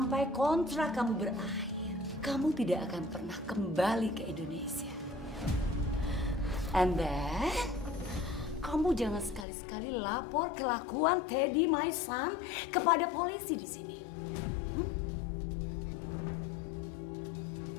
kontrak kamu berakhir, kamu tidak akan pernah kembali ke Indonesia. And then, kamu jangan sekali-sekali lapor kelakuan Teddy, my son, kepada polisi di sini.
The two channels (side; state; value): right; drops out; at 9.5 s